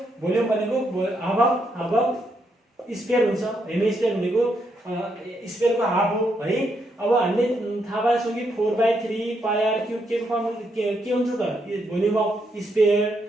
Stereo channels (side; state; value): both; normal; correlation 0.78